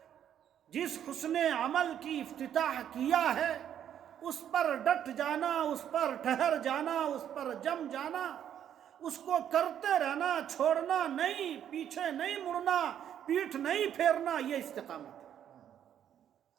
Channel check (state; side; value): quieter; left; 9.8 dB